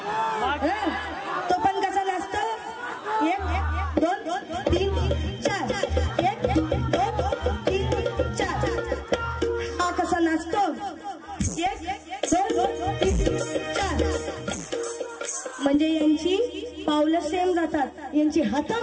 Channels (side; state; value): both; identical; correlation 1.00